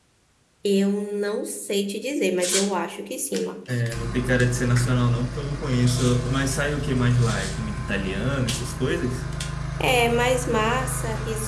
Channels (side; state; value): both; identical; correlation 1.00